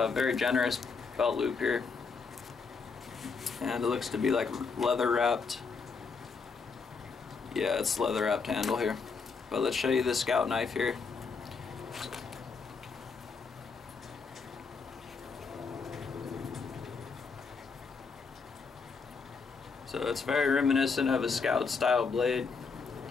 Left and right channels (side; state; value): right; quieter; 5.0 dB